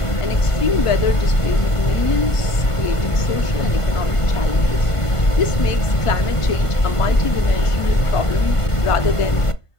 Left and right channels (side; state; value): right; late; 1.5 ms